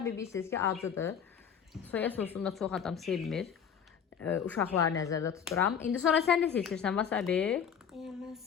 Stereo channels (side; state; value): right; quieter; 7.7 dB